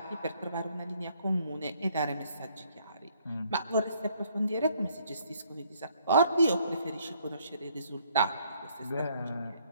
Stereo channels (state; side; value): inverted; both; correlation -0.66